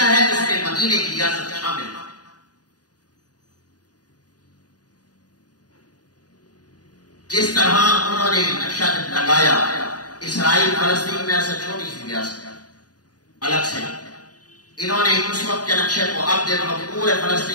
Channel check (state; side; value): late; right; 0.68 ms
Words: ہے اس میں مدینے کی ریاست شامل ہے۔ جس طرح انہوں نے نقشہ لگایا اسرائیل فلسطین میں ایسا چھوٹی سی ریاست الگ سے، انہوں نے اس وقت کے نقشے کو اب دیکھو پورے